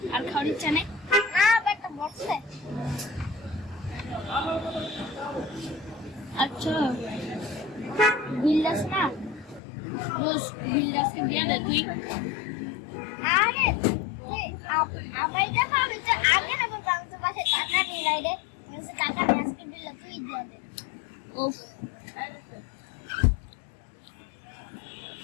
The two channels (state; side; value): drops out; right; at 9.6 s